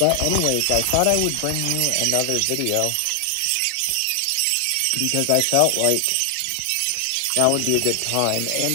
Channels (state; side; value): different; both; correlation 0.00